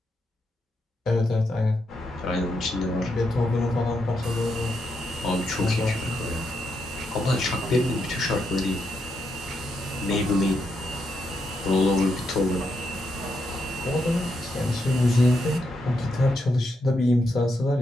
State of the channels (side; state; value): both; normal; correlation 0.81